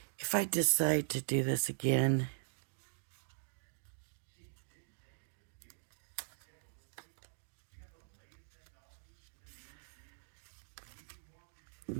If I decide to do this again, I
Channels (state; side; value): silent; left; digital silence